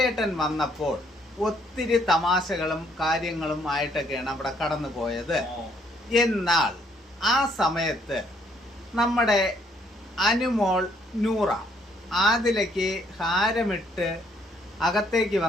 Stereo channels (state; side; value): normal; both; correlation 0.67